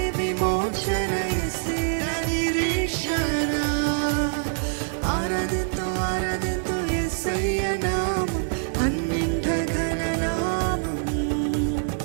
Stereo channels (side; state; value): left; silent; 62 dB below the other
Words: విమోచన, యేసే నా నిరీక్షణ. ఆరాధింతు ఆరాధింతు యేసయ్య నామం అన్నింట ఘననామం.